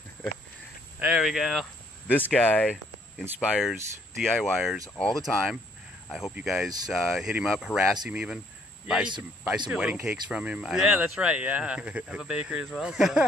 There we go. This guy inspires DIYers all the time. I hope you guys hit him up, harass him even. Buy some wedding cakes from him. Yeah, that's right. Yeah. Have a bakery as well. So,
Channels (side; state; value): both; normal; correlation 0.65